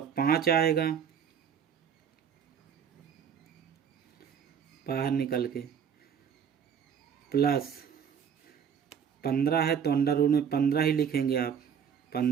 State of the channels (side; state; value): left; quieter; 7.6 dB